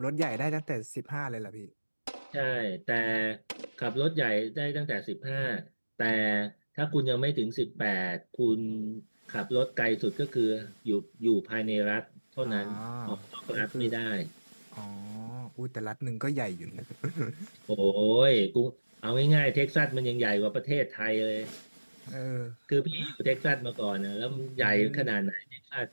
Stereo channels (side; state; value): both; inverted; correlation -1.00